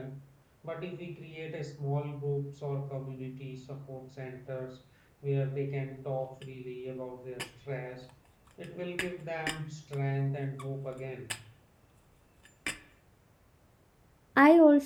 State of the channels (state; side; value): identical; both; correlation 1.00